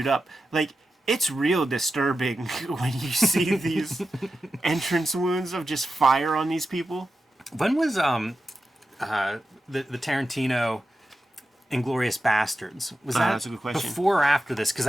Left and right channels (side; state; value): both; normal; correlation 0.91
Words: up. Like, it's real disturbing when you see these entrance wounds of just fire on these people. When was the Tarantino Inglorious Bastards. Was That's a good question. before or after this? Because